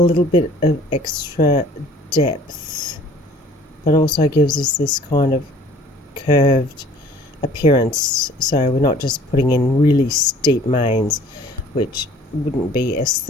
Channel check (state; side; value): normal; both; correlation 0.53